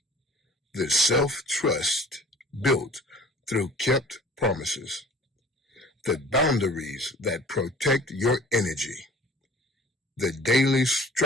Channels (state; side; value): normal; both; correlation 0.48